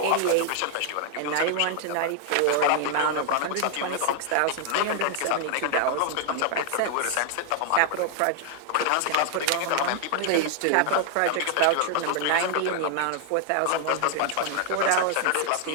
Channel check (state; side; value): different; both; correlation 0.00